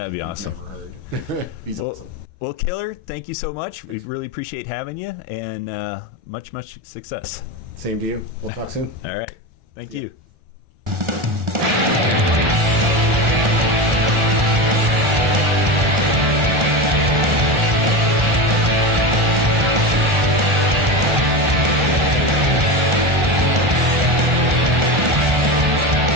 be awesome. Never heard. He's awesome. Well, Killer, thank you so much. We really appreciate having you, and much success. Same to you. We'll talk soon. All right. Thank you.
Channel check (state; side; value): late; left; 1.4 ms